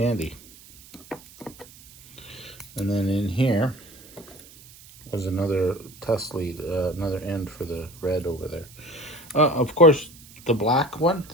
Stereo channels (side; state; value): right; noise; hiss, 21 dB below the sound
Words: And then in here was another test lead, another end for the red over there. Of course, the black one,